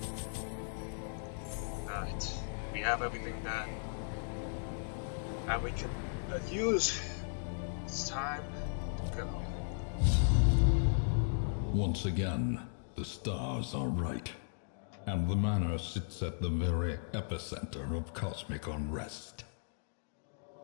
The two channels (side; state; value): right; silent; digital silence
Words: Right, we have everything that we can use. It's time to go. Once again, the stars are right. And the manor sits at the very epicenter of cosmic unrest.